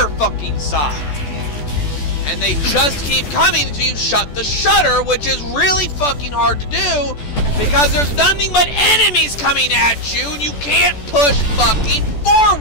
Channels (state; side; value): late; right; 14 ms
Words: fucking side. And they just keep coming until you shut the shutter, which is really fucking hard to do because there's nothing but enemies coming at you and you can't push fucking